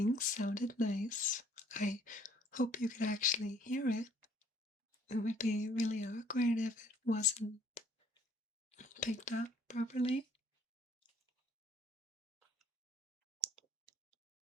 sounded nice. I hope you could actually hear it. It would be really awkward if it wasn't picked up properly.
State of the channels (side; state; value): both; normal; correlation 0.60